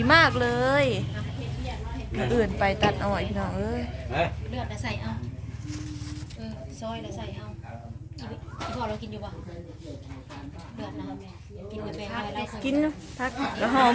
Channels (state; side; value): identical; both; correlation 1.00